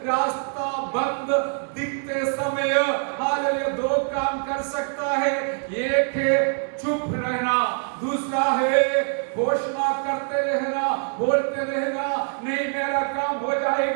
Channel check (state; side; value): silent; left; 57 dB below the other